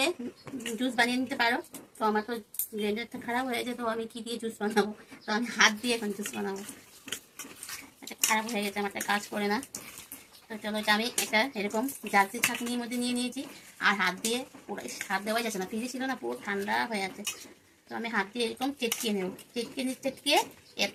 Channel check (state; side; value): identical; both; correlation 1.00